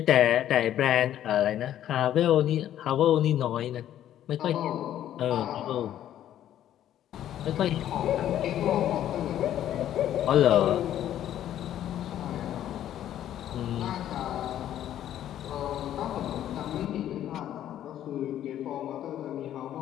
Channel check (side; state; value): right; quieter; 11.5 dB